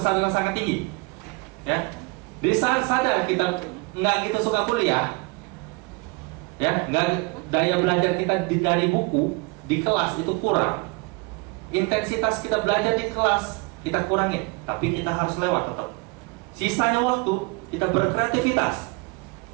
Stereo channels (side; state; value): left; quieter; 28.9 dB